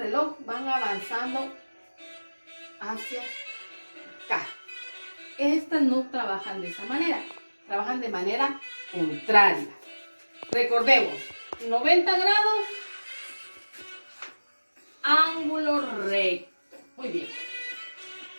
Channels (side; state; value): both; inverted; correlation -1.00